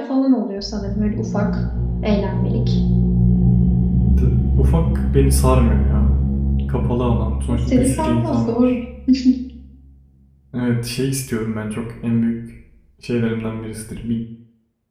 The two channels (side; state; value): both; identical; correlation 1.00